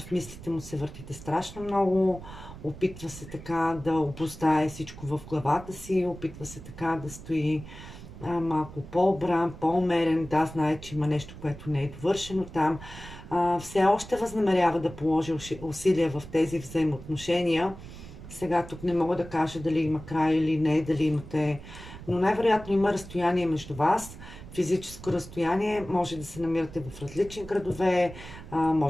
мислите му се въртите страшно много. Опитва се така да обуздае всичко в главата си. Опитва се така да стои малко по-обран, по-умерен. Да, знае, че има нещо, което не е довършено там. Все още възнамерява да положи усилия в тези взаимоотношения. Сега тук не мога да кажа дали има край или не, дали имате, но най-вероятно има разстояние между вас. Физическо разстояние, може да се намирате в различни градове,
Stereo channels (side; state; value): right; noise; rumble, 15 dB below the sound